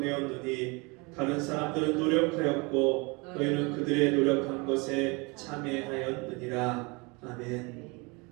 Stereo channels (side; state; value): left; quieter; 28.4 dB